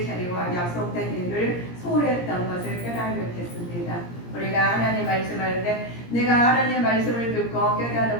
자리와 약속된 일을 소홀했던 것을 깨달게 됐습니다. 우리가 하나님 말씀할 때 내가 하나님 말씀을 듣고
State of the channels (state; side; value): late; right; 17 ms